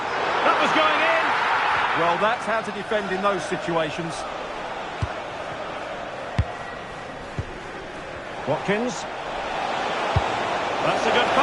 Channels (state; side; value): identical; both; correlation 1.00